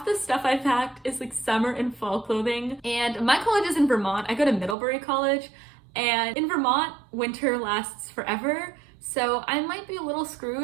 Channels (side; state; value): left; drops out; at 4.8 s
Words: the stuff I packed is like summer and fall clothing. And my college is in Vermont. I go to Middlebury College, and in Vermont, winter lasts forever. So I might be a little